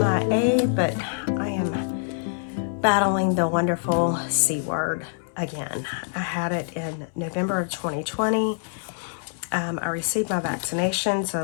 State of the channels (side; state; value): right; silent; 62 dB below the other